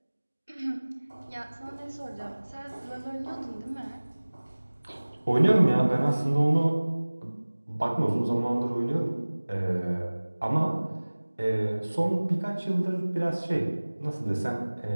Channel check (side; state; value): both; inverted; correlation -1.00